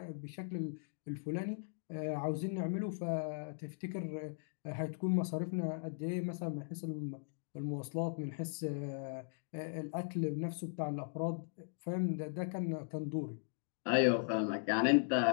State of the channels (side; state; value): right; silent; digital silence